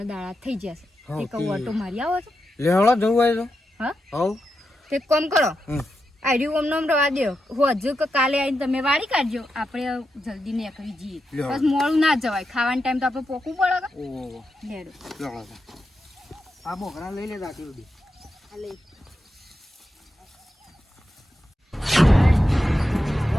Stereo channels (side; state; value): both; normal; correlation 0.87